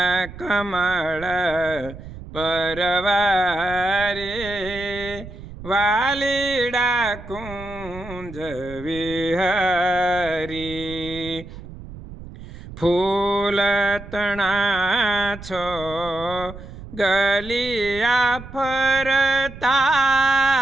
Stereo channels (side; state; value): right; noise; rumble, 14 dB below the sound